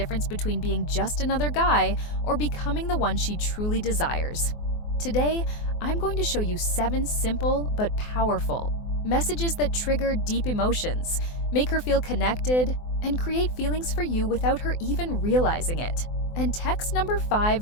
between being just another guy or becoming the one she truly desires. Today, I'm going to show you 7 simple but powerful messages that trigger deep emotions, make her feel connected, and create feelings for you without her even realizing it. And text number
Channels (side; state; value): right; late; 24 ms